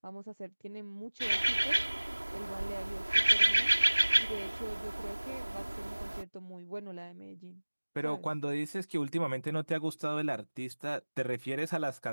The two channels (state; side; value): inverted; both; correlation -1.00